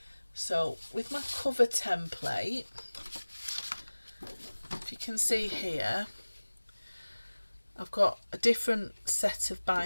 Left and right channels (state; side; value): inverted; both; correlation -1.00